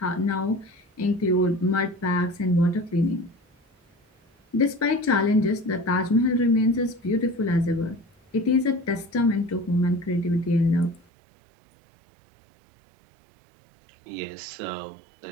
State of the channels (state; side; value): drops out; left; at 11.1 s